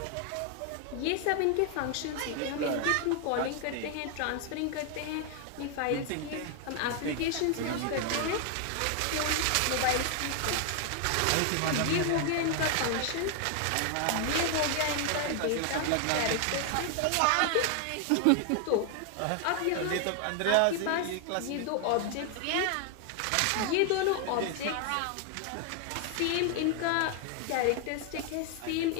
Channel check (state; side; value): different; both; correlation 0.00